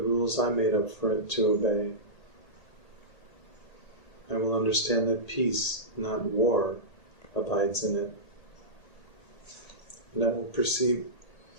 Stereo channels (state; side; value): late; right; 1.8 ms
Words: I made up for it to obey. I will understand that peace, not war, abides in it. And I will perceive